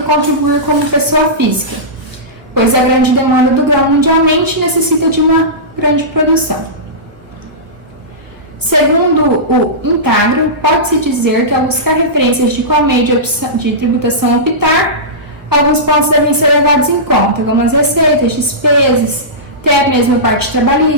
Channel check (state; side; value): late; left; 1.3 ms